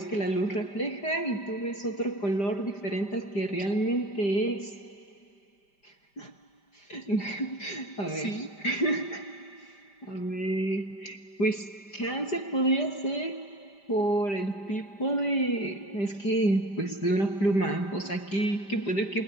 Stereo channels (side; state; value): right; late; 5.0 ms